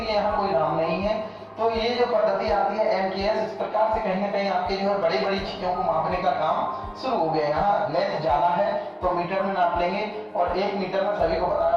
यहाँ कोई नाम नहीं है। तो ये जो पद्धति आती है MKS, इस प्रकार से कहीं ना कहीं आपके जो है बड़ी बड़ी चीजों को मापने का काम शुरू हो गया। यहाँ लेंथ ज्यादा है तो मीटर में नाप लेंगे, और 1 मीटर में सभी को पता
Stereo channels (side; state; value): both; identical; correlation 1.00